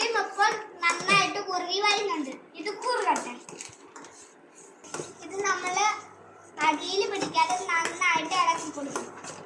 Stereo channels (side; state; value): both; identical; correlation 1.00